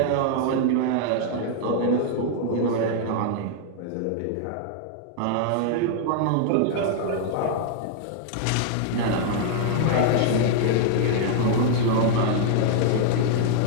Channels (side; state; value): both; different; correlation -0.01